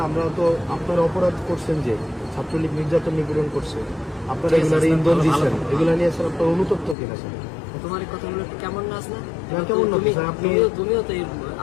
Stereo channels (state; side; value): drops out; right; at 7.0 s